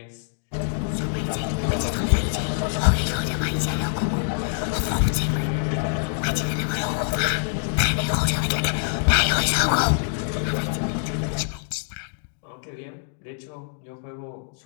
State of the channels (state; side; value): silent; right; digital silence